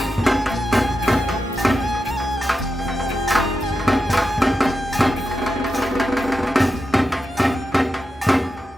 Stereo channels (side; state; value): both; normal; correlation 0.89